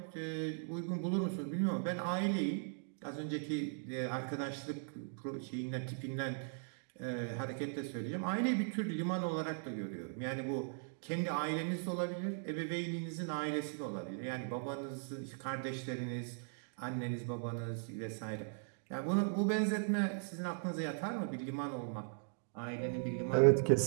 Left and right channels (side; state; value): left; silent; digital silence